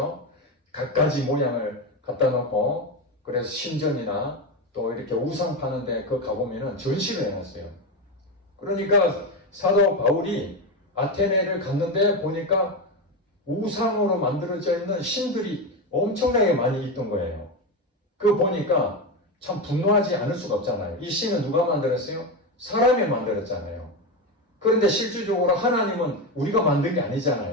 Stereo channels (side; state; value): both; normal; correlation 0.15